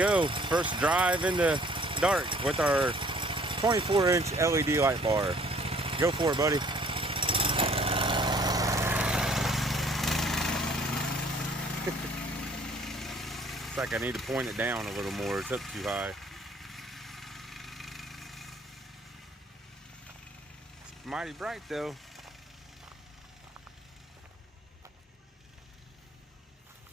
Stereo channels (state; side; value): normal; both; correlation 0.58